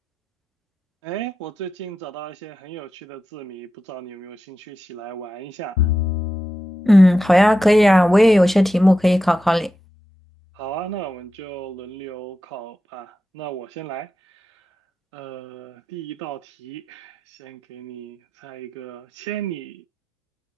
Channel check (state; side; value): normal; both; correlation 0.90